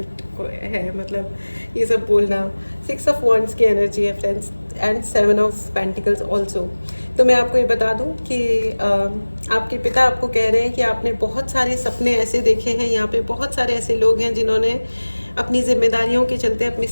है, मतलब ये सब बोलना। 6 ऑफ वॉन्ड्स की एनर्जी है friends, and 7 of pentacles also. तो मैं आपको ये बता दूं कि आपके पिता आपको कह रहे हैं कि आपने बहुत सारे सपने ऐसे देखे हैं, यहाँ पे बहुत सारे ऐसे लोग हैं जिन्होंने अपनी जिम्मेदारियों के चलते अपने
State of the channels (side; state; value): both; inverted; correlation -1.00